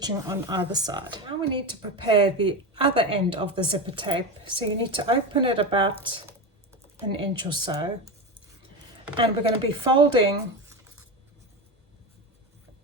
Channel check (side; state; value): both; normal; correlation 0.20